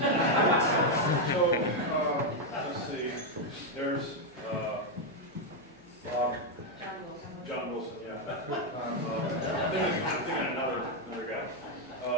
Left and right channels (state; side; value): normal; both; correlation 0.02